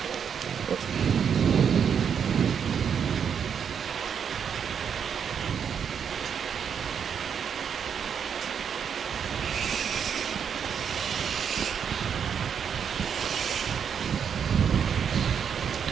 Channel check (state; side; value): quieter; left; 7.5 dB